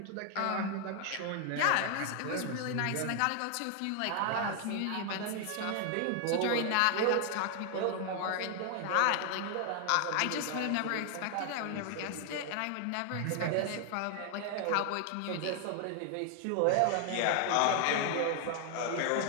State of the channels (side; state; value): both; different; correlation 0.00